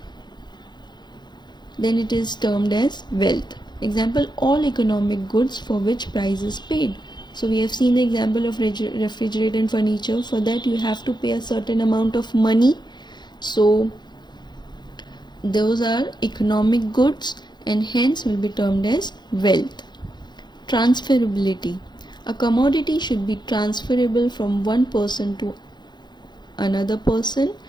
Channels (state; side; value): late; right; 0.21 ms